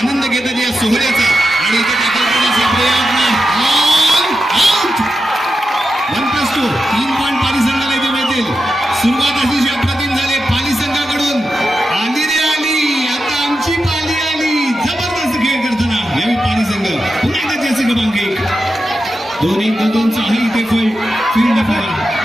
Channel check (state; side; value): normal; both; correlation 0.90